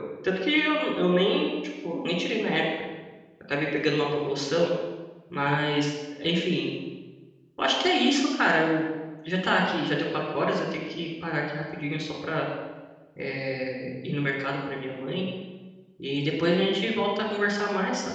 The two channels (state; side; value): identical; both; correlation 1.00